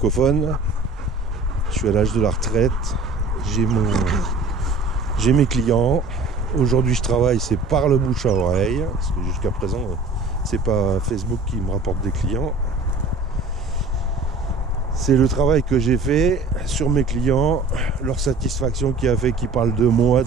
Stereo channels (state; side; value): quieter; left; 3.4 dB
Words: Je suis à l'âge de la retraite, j'ai mes clients. Aujourd'hui, je travaille, c'est par le bouche à oreille, parce que jusqu'à présent, c'est pas Facebook qui me rapporte des clients. C'est le travail que j'ai fait sur mes clients, leur satisfaction qui a fait qu'ils parlent de moi